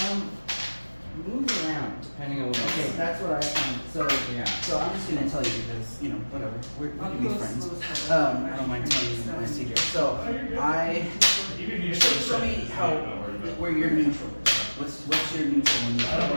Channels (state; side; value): inverted; both; correlation -1.00